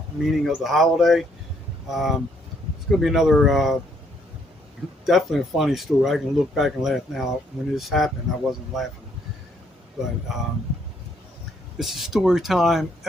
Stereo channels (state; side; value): normal; both; correlation 0.69